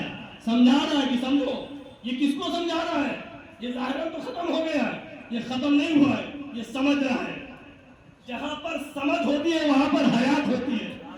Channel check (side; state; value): both; identical; correlation 1.00